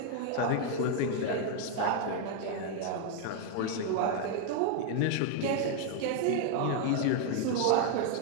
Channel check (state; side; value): different; both; correlation 0.00